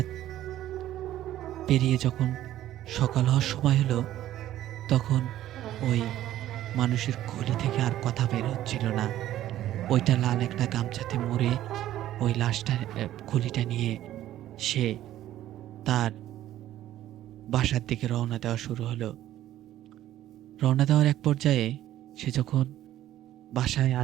পেরিয়ে যখন সকাল হওয়ার সময় হলো, তখন ওই মানুষের খুলি থেকে আর কথা বের হচ্ছিল না। ওইটা লাল একটা গামছাতে মুড়ে ওই লাশটা খুলিটা নিয়ে সে তার বাসার দিকে রওনা দেওয়া শুরু হলো। রওনা দেওয়ার এক পর্যায়ে সে যখন বাসায়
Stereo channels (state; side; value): quieter; left; 13.2 dB